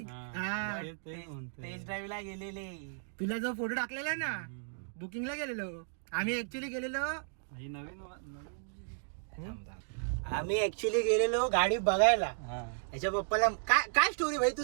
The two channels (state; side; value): silent; left; digital silence